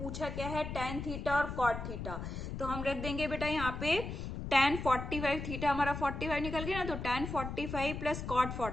क्या है, टेन थीटा और कॉट थीटा। तो हम रख देंगे बेटा यहाँ पे tan 45, थीटा हमारा 45 निकल गया ना, तो tan 45 प्लस कॉट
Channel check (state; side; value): noise; left; rumble, 6 dB below the sound